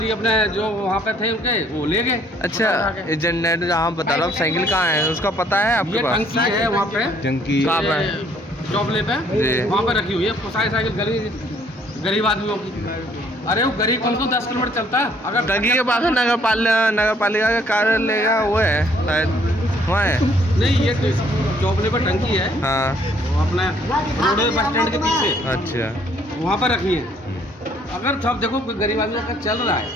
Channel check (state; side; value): normal; both; correlation 0.63